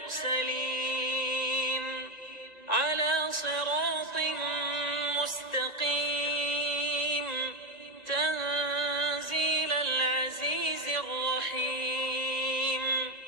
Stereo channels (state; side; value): late; right; 1.9 ms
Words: على صراط مستقيم تنزيل العزيز الرحيم